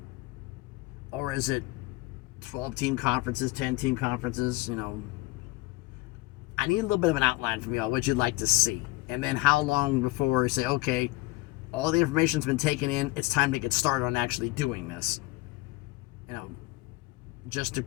Or is it 12-team conferences, 10-team conferences? I need a little bit of an outline from y'all, what you'd like to see. And then how long before you say, okay, all the information's been taken in, it's time to get started on actually doing this. Just the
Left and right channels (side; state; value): right; quieter; 20.8 dB